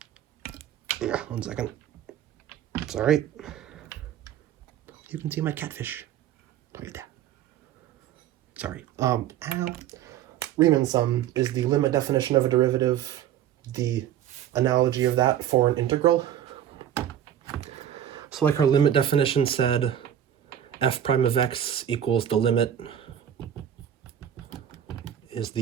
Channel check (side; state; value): left; quieter; 10.4 dB